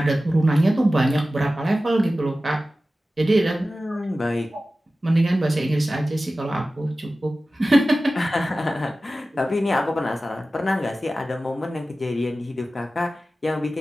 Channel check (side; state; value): both; normal; correlation 0.95